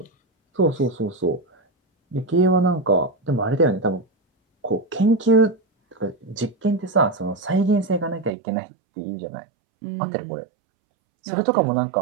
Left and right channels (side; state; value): left; drops out; at 8.3 s